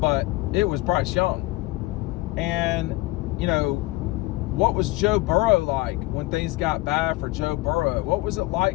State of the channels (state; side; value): quieter; right; 20.2 dB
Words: it was Bryce Young. And, what was Joe Burrow like when things got bad for Joe Burrow? What was it